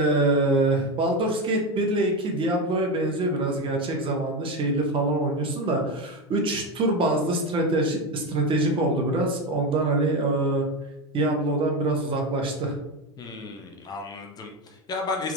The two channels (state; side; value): normal; both; correlation 0.16